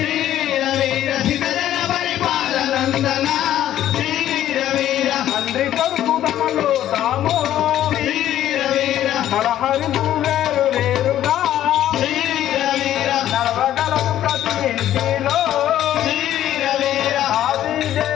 తండ్రి కొడుకు తమలో తాము నరహరులు వేరు వేరుగా నడవగలరు ప్రతి ఇంటిలో ఆది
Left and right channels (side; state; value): right; quieter; 12.1 dB